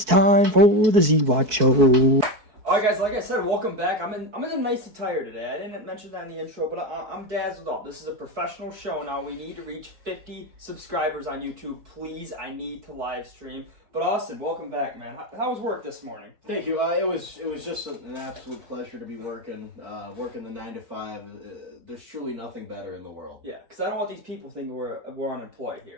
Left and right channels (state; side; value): late; left; 4.6 ms